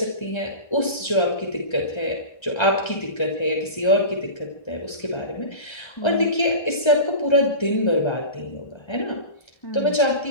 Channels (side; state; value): right; late; 1.3 ms